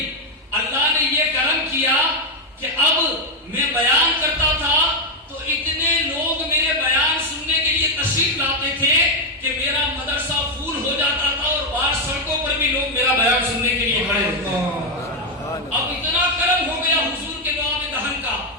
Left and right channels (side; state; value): both; normal; correlation 0.03